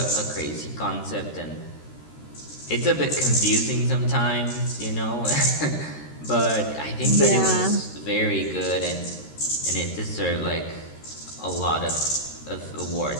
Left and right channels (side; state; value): right; late; 13 ms